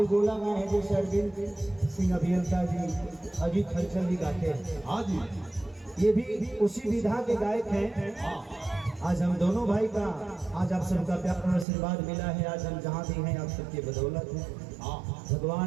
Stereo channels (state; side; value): drops out; left; at 11.7 s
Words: गाए हैं, जैसे अरविंद सिंह अभियंता जी, अजीत हलचल जी गाते हैं। हाँ जी, ये भी उसी विधा के गायक हैं। आज हम दोनों भाई का आज आप सबका प्यार और आशीर्वाद मिला है। आज हम जहाँ भी हैं आप सबके बदौलत है।